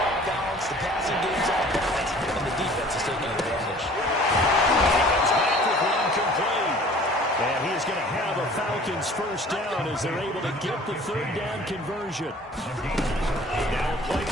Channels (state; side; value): normal; both; correlation 0.49